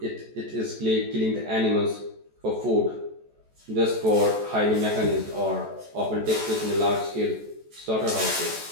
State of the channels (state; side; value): late; left; 14 ms